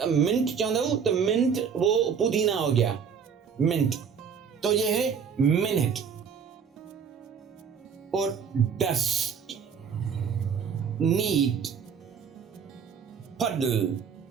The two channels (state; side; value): quieter; left; 6.7 dB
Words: मिंट चाहता हूं तो मिंट वो पुदीना हो गया, मिंट। तो ये है मिनट। और डस्ट, नीट, पडल,